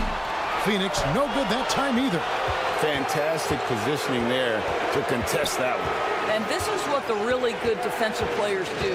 Phoenix, no good that time either. Fantastic positioning there to contest that one. And this is what the really good defensive players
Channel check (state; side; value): identical; both; correlation 1.00